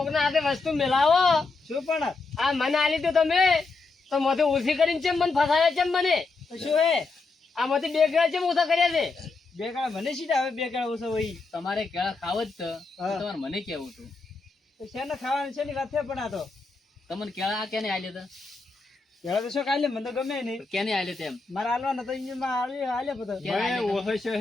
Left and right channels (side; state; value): right; quieter; 3.9 dB